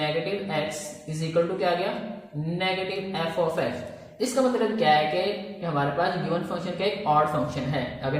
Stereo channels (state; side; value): identical; both; correlation 1.00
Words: x is equal to क्या आ गया, नेगेटिव एफ ऑफ एक्स। इसका मतलब क्या है कि हमारे पास गिवन फंक्शन का एक ऑड फंक्शन है